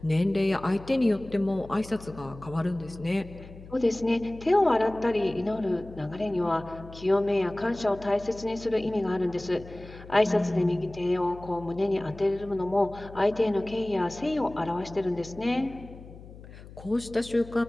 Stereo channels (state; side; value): noise; left; hum, 17 dB below the sound